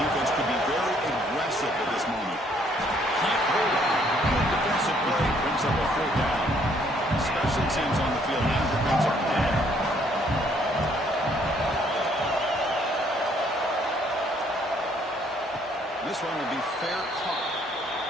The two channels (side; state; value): both; normal; correlation 0.65